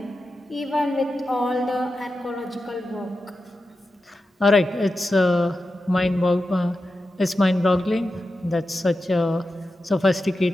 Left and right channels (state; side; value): normal; both; correlation 0.91